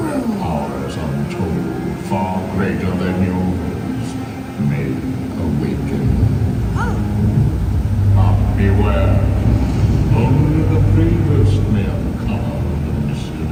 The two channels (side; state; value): both; identical; correlation 1.00